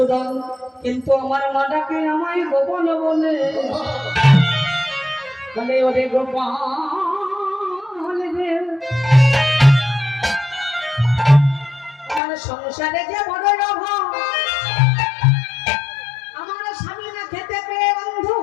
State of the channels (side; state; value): right; drops out; at 12.2 s